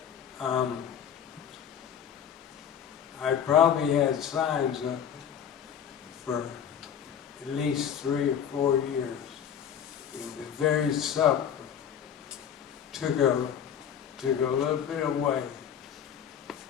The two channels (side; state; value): right; quieter; 8.5 dB